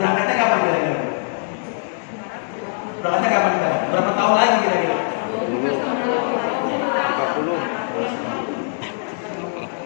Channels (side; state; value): right; silent; digital silence